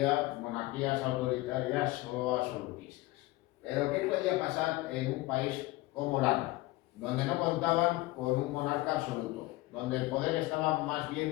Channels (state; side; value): quieter; right; 19.9 dB